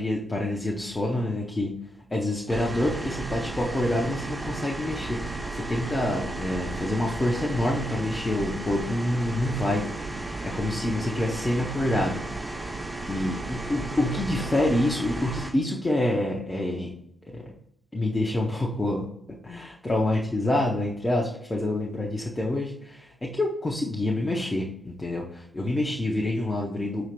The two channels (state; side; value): normal; both; correlation 0.84